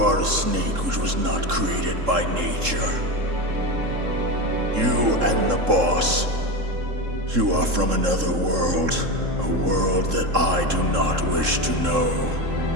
are a snake which was not created by nature. You and the boss You are from another world, a world that I do not wish to know.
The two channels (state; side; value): late; left; 3.7 ms